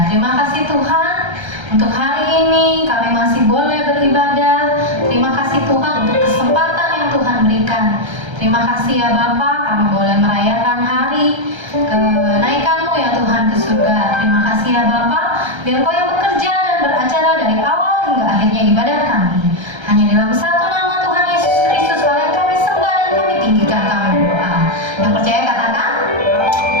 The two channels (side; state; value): left; late; 1.3 ms